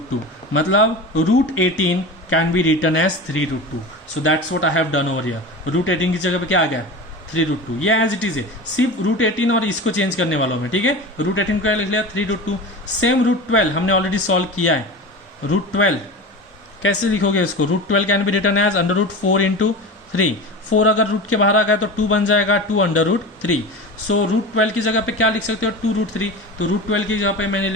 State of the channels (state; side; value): normal; both; correlation 0.30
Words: 2, मतलब root 18 can be written as 3 root 2। So that's what I have done over here. Root 18 की जगह पे क्या आ गया, 3 रूट 2, ये एज इट इज है, सिर्फ रूट 18 और इसको चेंज करने वालों में। ठीक है, रूट 18 को लिख लिया 3 रूट 2। सेम रूट 12 हमने ऑलरेडी सॉल्व किया है, रूट 12 कैसे लिखोगे इसको, root 12 can be written as under root 4 into 3। 4 अगर रूट के बाहर आ गया तो 2 बन जाएगा, 2 अंडर रूट 3। सो रूट 12 की जगह पे क्या लिख सकते हो, 2 रूट 3। तो रूट 12 की जगह पे मैंने